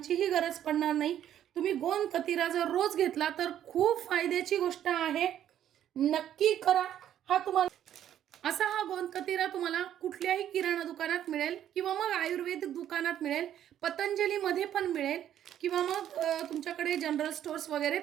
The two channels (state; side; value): quieter; left; 10.8 dB